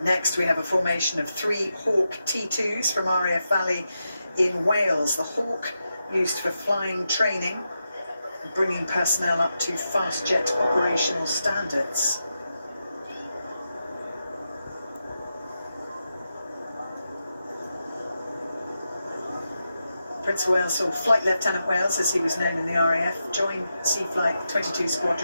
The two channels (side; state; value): both; inverted; correlation -0.88